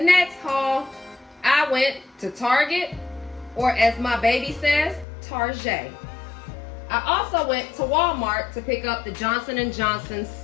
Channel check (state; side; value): drops out; right; at 5.1 s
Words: haul. I went to Target, or as my baby says, Target. I also went to Walmart to pick up the Johnson & Johnson